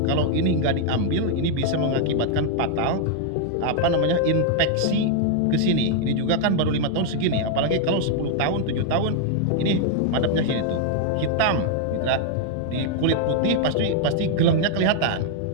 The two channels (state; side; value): different; both; correlation 0.00